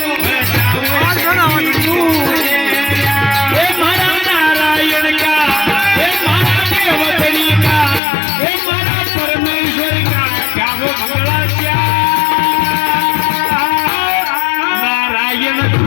बजाओ गूंजिया हे मारा नारायण का हे मारा देवतरी का हे मारा परमेश्वर का गाओ मंगला क्या नारायण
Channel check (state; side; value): drops out; right; at 8.0 s